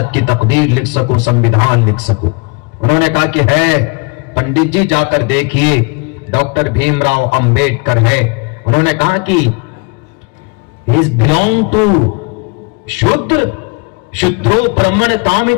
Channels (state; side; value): quieter; right; 31.4 dB